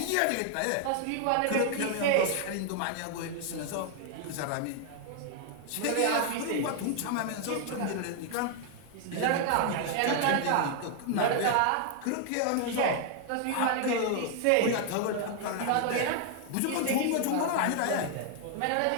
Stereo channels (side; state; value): both; different; correlation 0.00